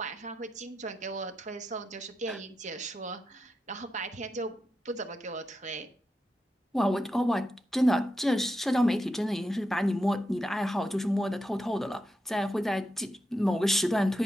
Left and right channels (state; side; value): normal; both; correlation 0.87